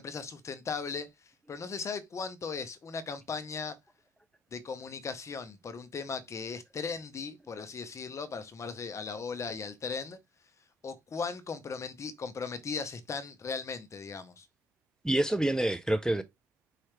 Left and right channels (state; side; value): normal; both; correlation 0.68